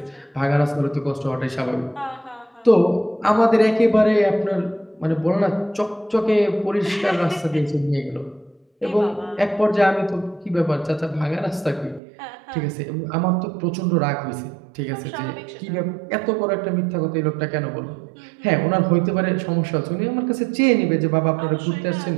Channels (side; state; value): left; drops out; at 12.0 s